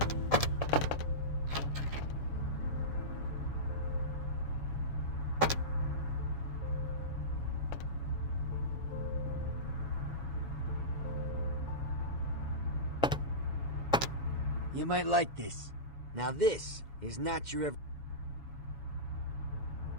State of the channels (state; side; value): late; right; 7.1 ms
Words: You might like this. Now this is not your...